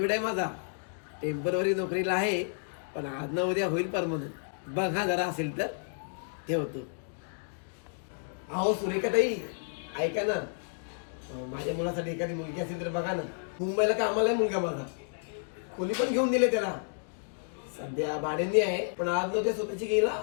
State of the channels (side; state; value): right; silent; digital silence